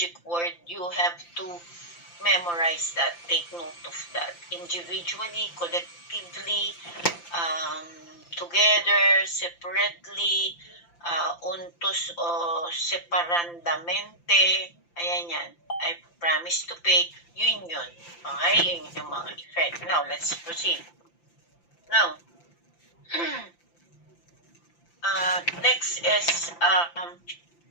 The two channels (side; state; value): right; late; 5.8 ms